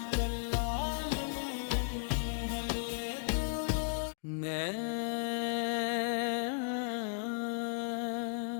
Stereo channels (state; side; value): silent; right; digital silence